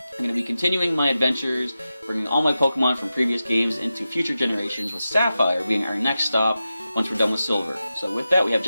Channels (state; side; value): inverted; both; correlation -0.92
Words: going to be continuing my adventures, bringing all my Pokemon from previous games into future generations, with Sapphire being our next stop once we're done with Silver. So with that, we have